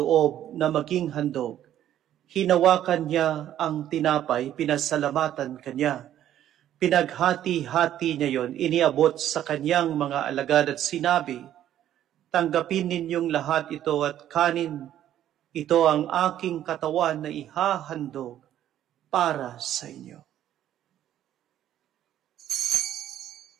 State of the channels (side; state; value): left; quieter; 11.6 dB